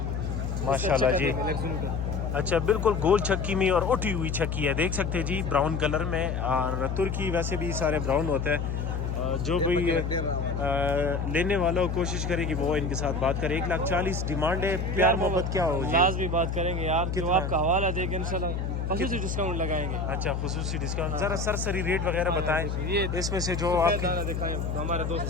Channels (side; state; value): left; noise; hum, 2 dB below the sound